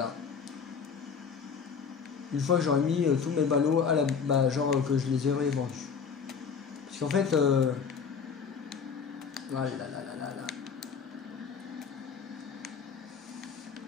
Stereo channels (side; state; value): right; quieter; 6.1 dB